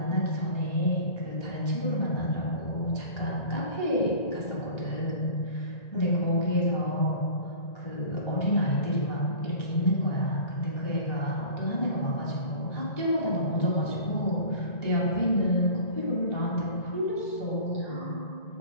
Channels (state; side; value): late; right; 1.9 ms